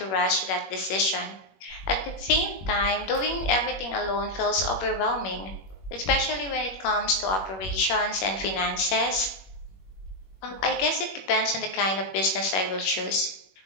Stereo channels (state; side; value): late; right; 21 ms